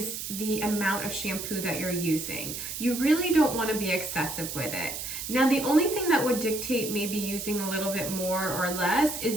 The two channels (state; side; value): noise; right; hiss, 6 dB below the sound